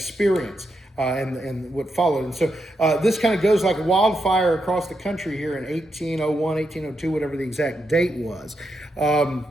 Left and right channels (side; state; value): both; normal; correlation 0.83